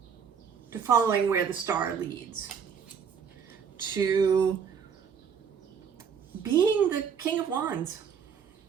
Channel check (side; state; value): left; quieter; 6.9 dB